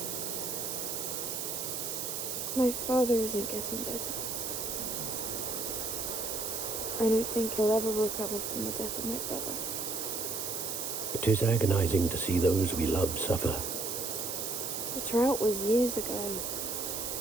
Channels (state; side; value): noise; right; hiss, 3 dB below the sound